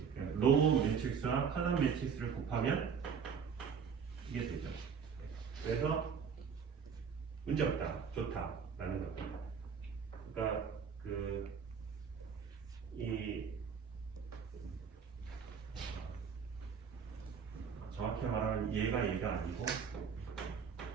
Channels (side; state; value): left; quieter; 6.6 dB